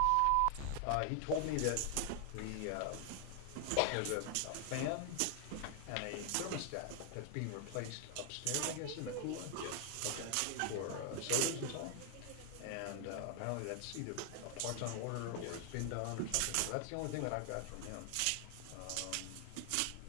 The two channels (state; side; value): different; both; correlation 0.00